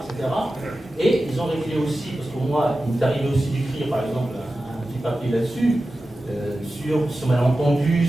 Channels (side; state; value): both; normal; correlation 0.94